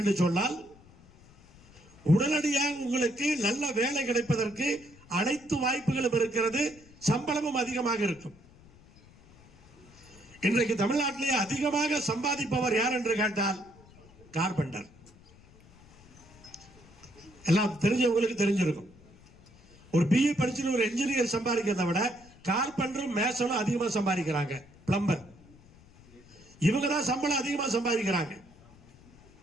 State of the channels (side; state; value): left; noise; rumble, 25 dB below the sound